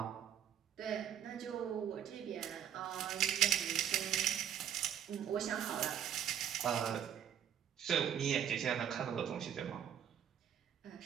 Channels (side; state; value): left; quieter; 9.4 dB